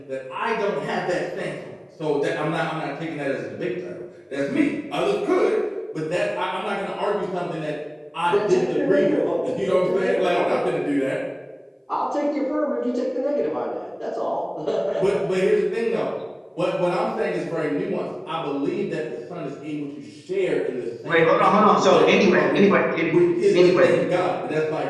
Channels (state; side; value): identical; both; correlation 1.00